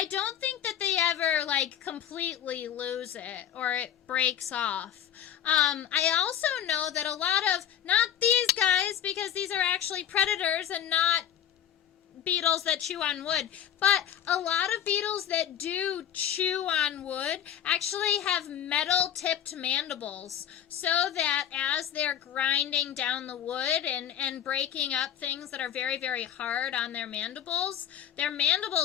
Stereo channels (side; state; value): right; quieter; 10.0 dB